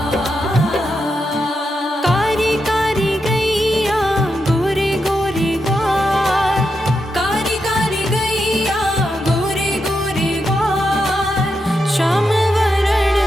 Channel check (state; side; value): normal; both; correlation 0.85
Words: कारी कारी गैया गोरे गोरे ग्वाल, कारी कारी गैया गोरे गोरे ग्वाल, श्याम वरण